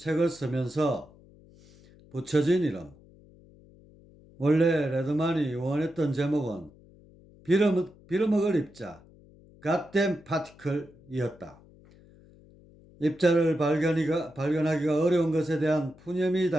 쓰면서 붙여진 이름. 원래 레드만이 원했던 제목은 빌어먹을 입자, Goddamn Particle이었다. 입자를 발견하기가 어려운 것에 대한 푸념이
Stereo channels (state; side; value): noise; left; hum, 25 dB below the sound